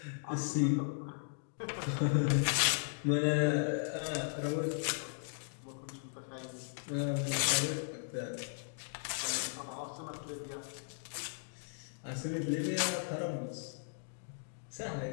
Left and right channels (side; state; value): right; silent; digital silence